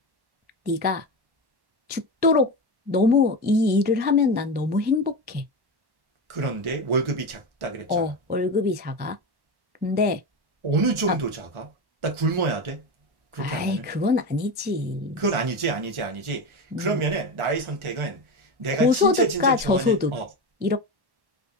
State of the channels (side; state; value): left; late; 1.4 ms